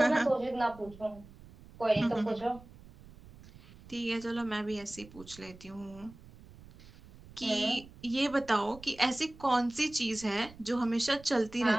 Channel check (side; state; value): right; noise; rumble, 20 dB below the sound